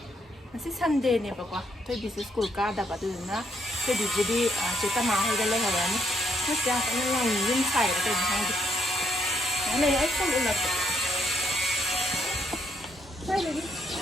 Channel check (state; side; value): normal; both; correlation 0.74